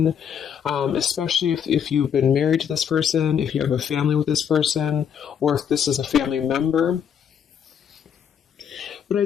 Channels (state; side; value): quieter; right; 8.1 dB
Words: especially if you've been married to this person, if you have a family with this person, or if this is a family member. But I